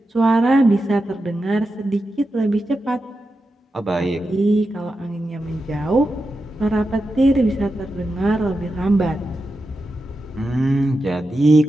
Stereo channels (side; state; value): both; normal; correlation 0.89